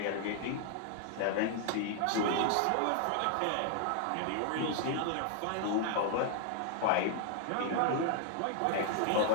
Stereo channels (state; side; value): different; both; correlation 0.00